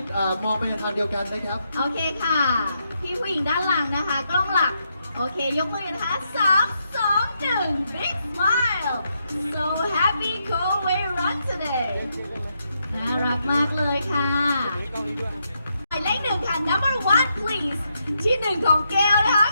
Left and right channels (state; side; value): inverted; both; correlation -0.80